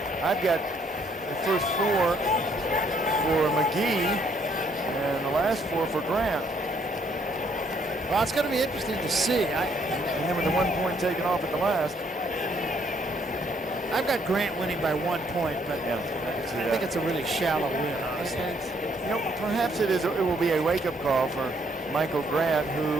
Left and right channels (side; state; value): both; normal; correlation 0.68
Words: I've got the first 4 for McGee and the last 4 for Grant. Well, it's going to be interesting to see. And then with the 1 point taken off at the last. I've got Grant winning by 1 point, but Yeah, I think it's a really shallow win, honestly. You know, perhaps it will be a wake-up call for Michael Grant,